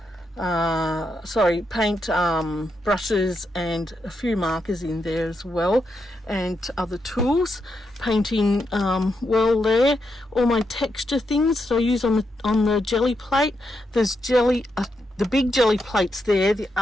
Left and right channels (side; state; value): both; normal; correlation 0.83